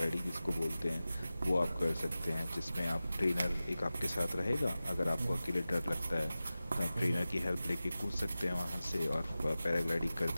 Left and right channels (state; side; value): inverted; both; correlation -0.95